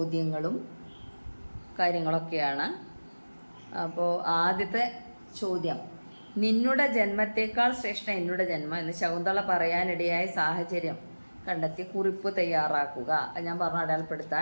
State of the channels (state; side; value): inverted; both; correlation -1.00